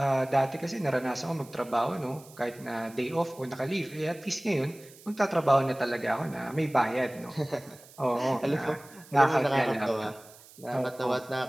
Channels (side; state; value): right; noise; hiss, 22 dB below the sound